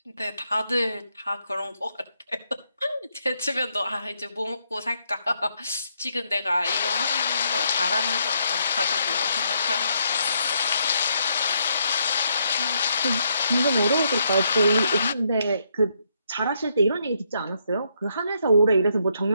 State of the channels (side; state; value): both; inverted; correlation -0.76